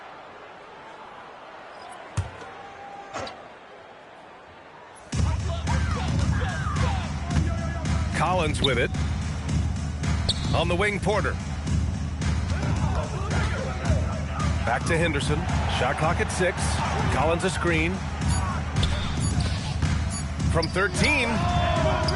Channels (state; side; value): identical; both; correlation 1.00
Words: Collins with it. On the wing, Porter. Back to Henderson. Shot clock at 6. Collins a screen. From 13.